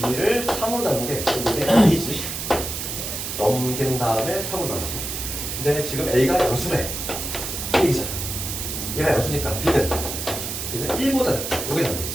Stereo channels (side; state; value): right; noise; hiss, 5 dB below the sound